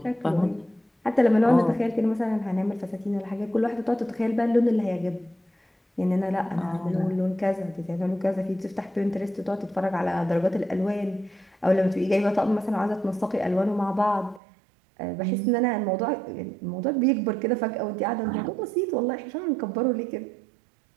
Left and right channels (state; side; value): drops out; left; at 14.4 s